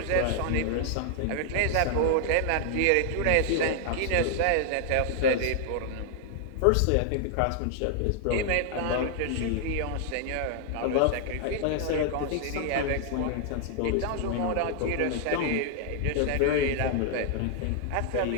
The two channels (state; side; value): different; both; correlation 0.00